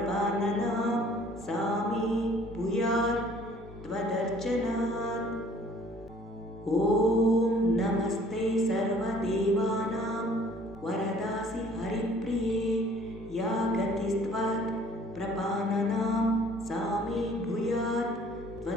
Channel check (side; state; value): both; normal; correlation 0.55